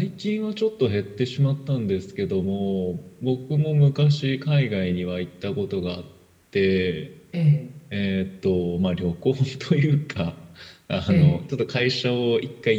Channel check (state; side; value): identical; both; correlation 1.00